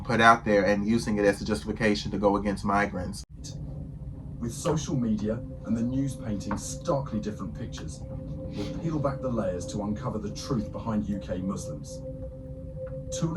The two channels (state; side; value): identical; both; correlation 1.00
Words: put out there and using it as a justification to go against migrants. With social media and the news painting starkly different pictures, we'll peel back the layers to uncover the truth behind UK Muslims.